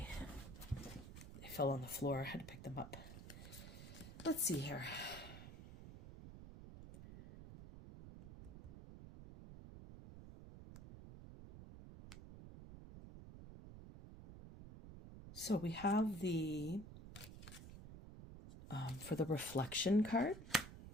They fell on the floor. I had to pick them up. Let's see here. So we have the, for the reflection card,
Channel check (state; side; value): noise; right; rumble, 13 dB below the sound